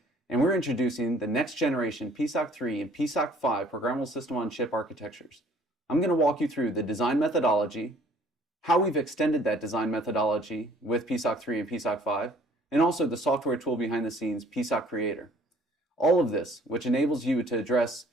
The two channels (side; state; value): both; normal; correlation 0.56